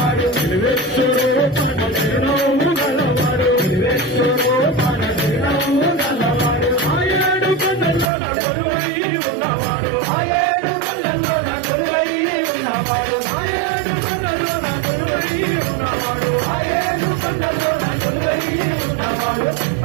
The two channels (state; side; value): drops out; left; at 8.1 s